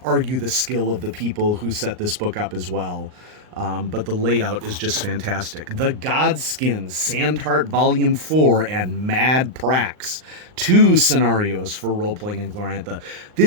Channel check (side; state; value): left; late; 39 ms